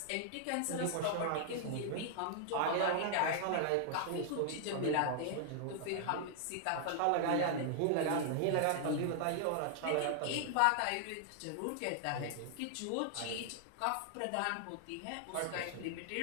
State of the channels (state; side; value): different; both; correlation -0.01